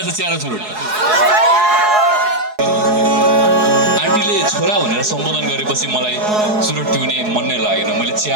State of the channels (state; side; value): late; left; 4.7 ms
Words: छ चिया र चुरोट आन्टीले छोरा भनेर सम्बोधन गरेपछि मलाई चुरोट पिउने मन नै लागेन मैले